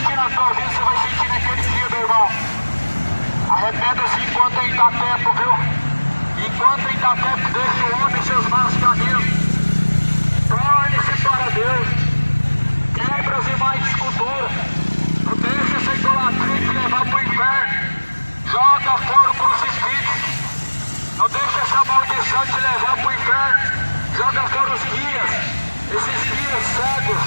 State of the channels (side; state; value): both; inverted; correlation -1.00